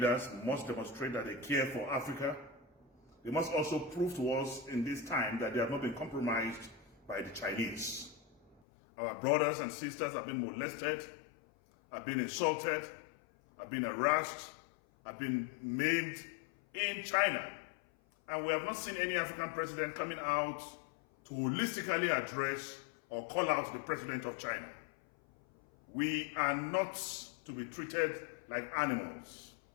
must demonstrate that they care for Africa. They must also prove to us in this time that they have not been compromised by the Chinese. Our brothers and sisters have been molested, have been insulted, have been harassed, have been maimed in China. And we have not seen any African president coming out to holistically address or call out the president of China. We are not to be treated like animals.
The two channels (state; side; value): drops out; right; at 8.6 s